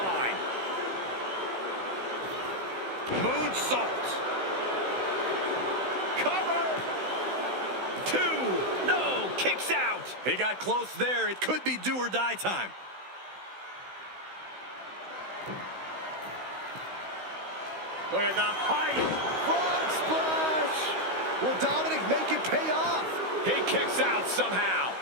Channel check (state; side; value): late; left; 16 ms